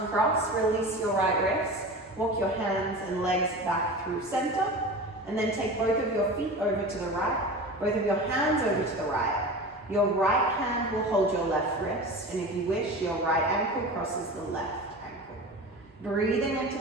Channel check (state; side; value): normal; both; correlation 0.32